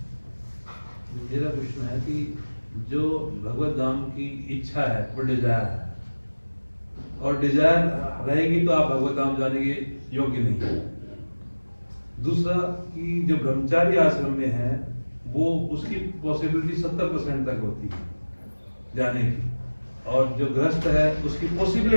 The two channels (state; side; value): inverted; both; correlation -1.00